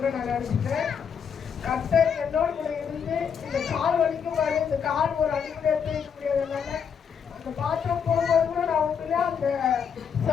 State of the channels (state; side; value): quieter; right; 7.1 dB